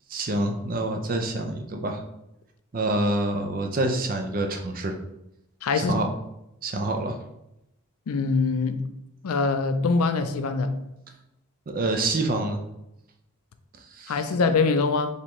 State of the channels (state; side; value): normal; both; correlation 0.31